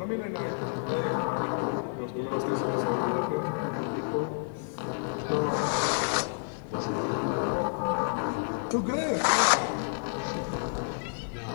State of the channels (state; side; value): silent; right; digital silence